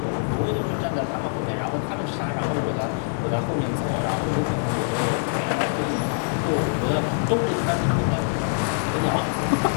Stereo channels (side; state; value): right; silent; digital silence